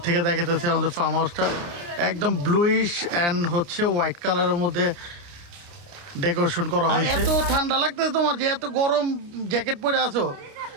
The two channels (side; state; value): left; late; 29 ms